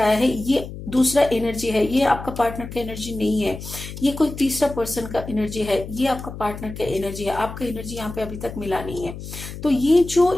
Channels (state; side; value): noise; left; hum, 11 dB below the sound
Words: है। ये दूसरा एनर्जी है, ये आपका पार्टनर का एनर्जी नहीं है, ये कोई तीसरा पर्सन का एनर्जी है, ये आपका पार्टनर का एनर्जी है। आपका एनर्जी यहाँ पे अभी तक मिला नहीं है। तो ये जो